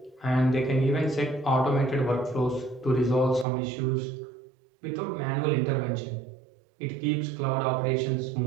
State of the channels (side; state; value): left; drops out; at 3.5 s